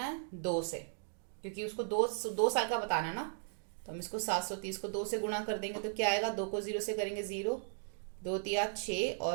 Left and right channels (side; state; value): left; silent; digital silence